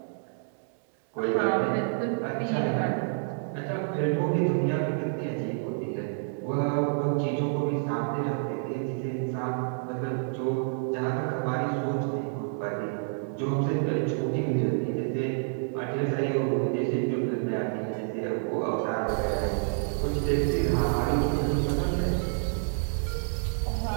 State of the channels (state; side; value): silent; left; digital silence